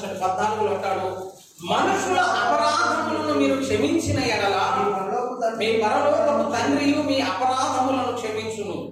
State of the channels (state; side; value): identical; both; correlation 1.00